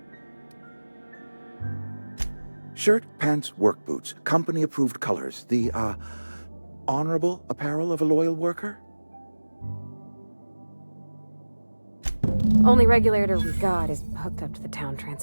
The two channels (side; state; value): both; inverted; correlation -1.00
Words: Shirt, pants, work boots, company-approved colors. The, honorable apparel of a loyal worker? Only regulator we got is hooked up to the town